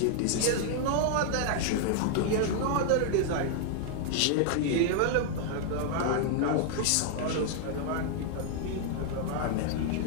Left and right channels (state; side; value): different; both; correlation 0.00